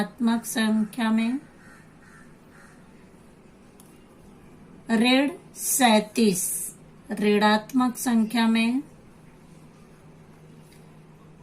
संख्या में, ऋण 37 ऋणात्मक संख्या में,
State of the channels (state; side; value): identical; both; correlation 1.00